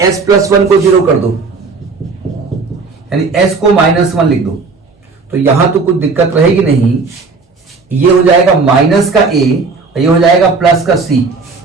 s+1 को 0 कर दो, यानी s को -1 लिख दो, तो यहां तो कुछ दिक्कत रहेगी नहीं। ये हो जाएगा माइनस का a और ये हो जाएगा प्लस का c।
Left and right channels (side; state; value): left; quieter; 4.3 dB